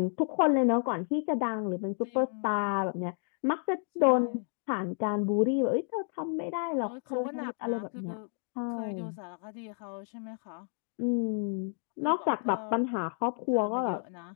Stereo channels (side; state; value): right; silent; 57 dB below the other